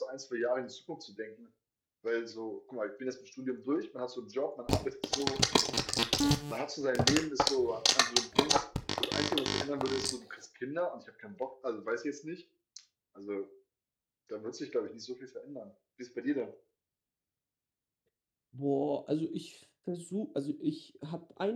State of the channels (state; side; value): identical; both; correlation 1.00